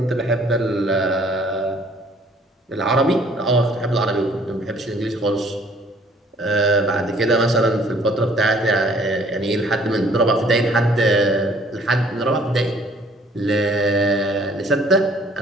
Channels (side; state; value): both; normal; correlation 0.58